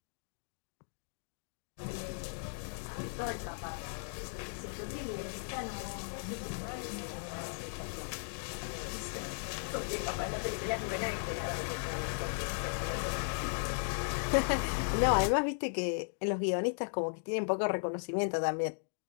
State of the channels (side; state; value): right; silent; digital silence